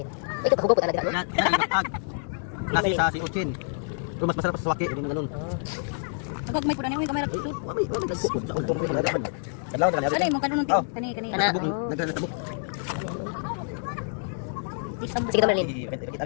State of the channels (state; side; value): silent; right; digital silence